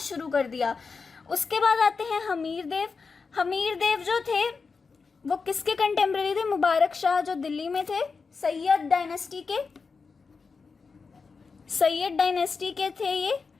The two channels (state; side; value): quieter; right; 4.8 dB